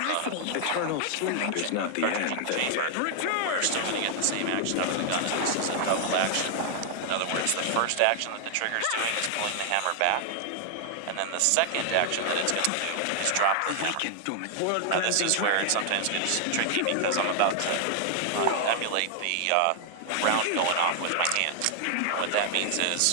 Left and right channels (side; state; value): both; different; correlation 0.00